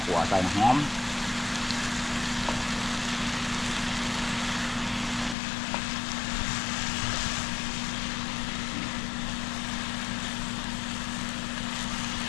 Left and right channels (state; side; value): drops out; right; at 5.4 s